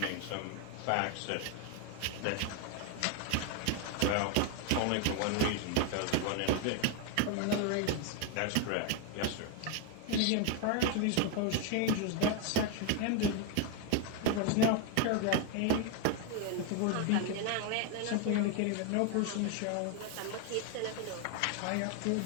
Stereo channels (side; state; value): both; different; correlation 0.01